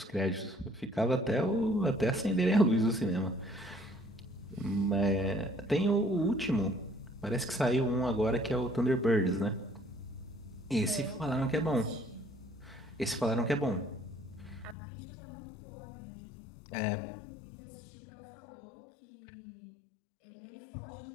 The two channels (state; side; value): drops out; right; at 14.8 s